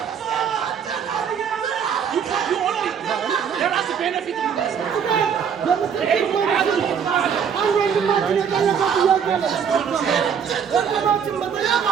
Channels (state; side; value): quieter; left; 7.4 dB